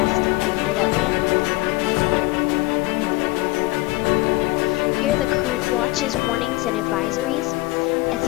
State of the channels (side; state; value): right; quieter; 21.8 dB